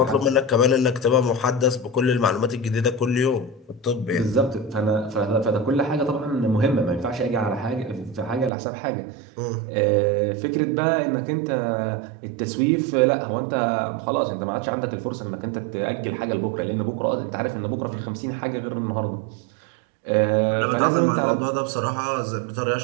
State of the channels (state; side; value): drops out; left; at 8.5 s